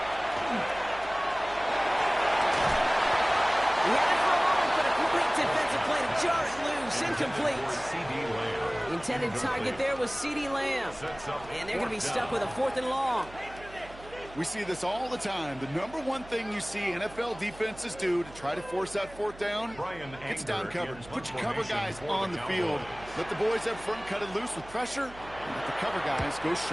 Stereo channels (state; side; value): noise; right; hum, 18 dB below the sound